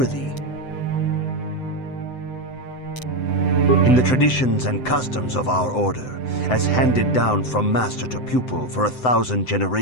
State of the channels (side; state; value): right; late; 7.8 ms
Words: In the traditions and customs of our order, as handed down from master to pupil for 1,000